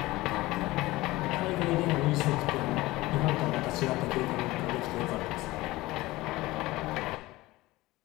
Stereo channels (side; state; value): right; quieter; 19.1 dB